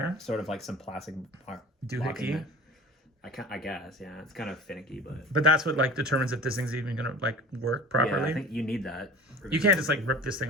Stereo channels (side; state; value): both; normal; correlation 0.40